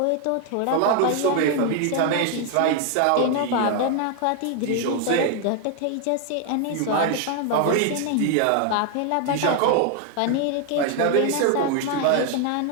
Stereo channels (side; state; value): both; different; correlation 0.01